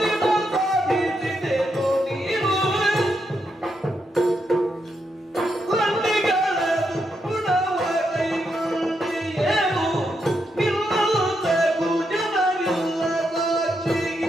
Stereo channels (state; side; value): normal; both; correlation 0.81